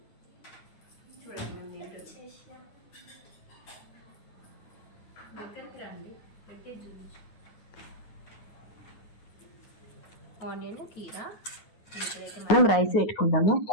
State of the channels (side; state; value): right; late; 9.6 ms